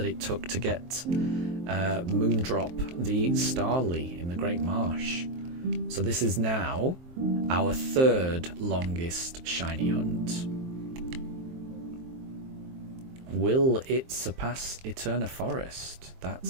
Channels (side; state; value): left; late; 23 ms